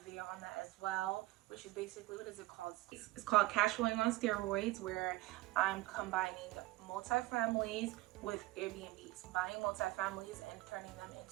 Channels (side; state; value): left; quieter; 18.6 dB